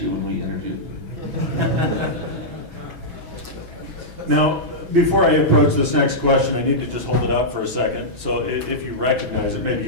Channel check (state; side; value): late; left; 6.1 ms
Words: you when we interviewed. Now, before I approach this next question, I need to just hold it up for a second. So if you recognize it, maybe